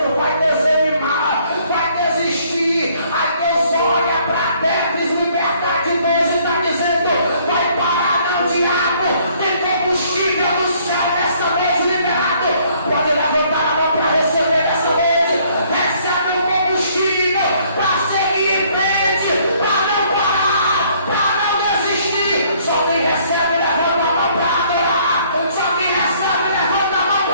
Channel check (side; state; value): both; inverted; correlation -0.63